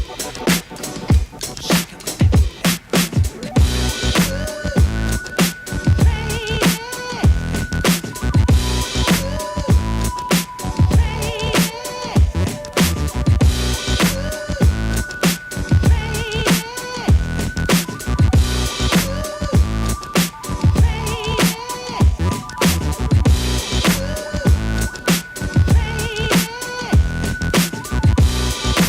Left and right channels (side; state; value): both; identical; correlation 1.00